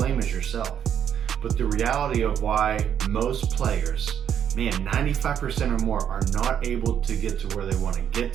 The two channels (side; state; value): left; quieter; 9.1 dB